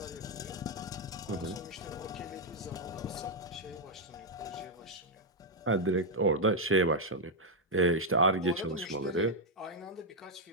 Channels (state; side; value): normal; both; correlation -0.01